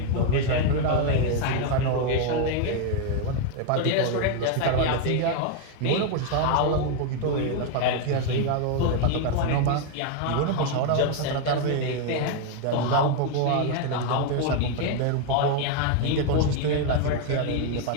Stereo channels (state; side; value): different; both; correlation 0.01